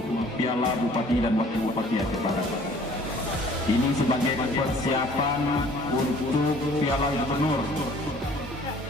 Piala Bupati dan Wakil Bupati Aceh Barat. Ini sebagai persiapan untuk Piala Gubernur,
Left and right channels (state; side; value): normal; both; correlation 0.53